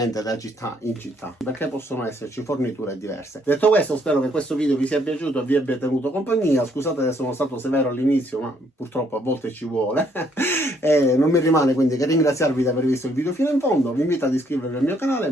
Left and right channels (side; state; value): both; normal; correlation 0.68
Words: da città in città, perché possono esserci forniture diverse. Detto questo, spero che questo video vi sia piaciuto e vi abbia tenuto compagnia. Scusate se sono stato severo all'inizio, ma purtroppo a volte ci vuole. E non mi rimane quindi che ringraziarvi di aver visto il video fino in fondo. Vi invito ad iscrivervi al mio canale,